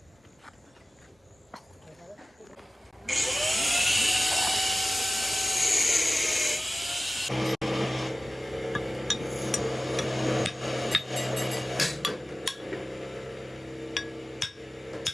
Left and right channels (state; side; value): normal; both; correlation 0.96